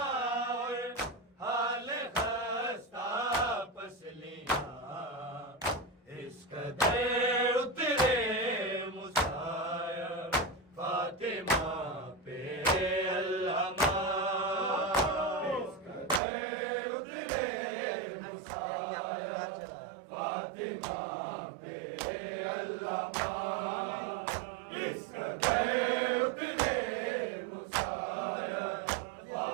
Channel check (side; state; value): left; drops out; at 16.2 s